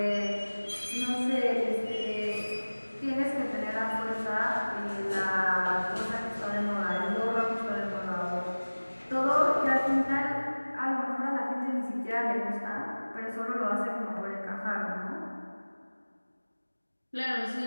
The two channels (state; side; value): inverted; both; correlation -1.00